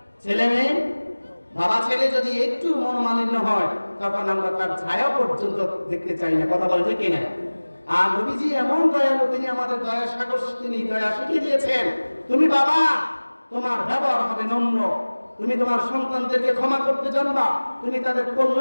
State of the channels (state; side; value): inverted; both; correlation -1.00